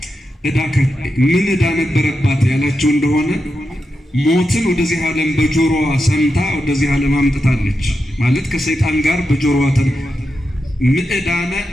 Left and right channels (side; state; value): both; normal; correlation 0.87